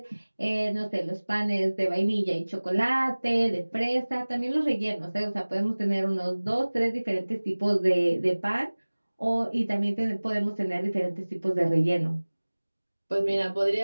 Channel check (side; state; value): both; inverted; correlation -1.00